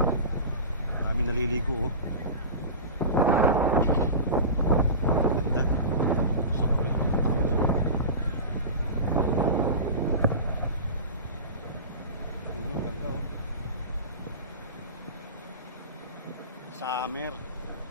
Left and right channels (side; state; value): both; inverted; correlation -0.31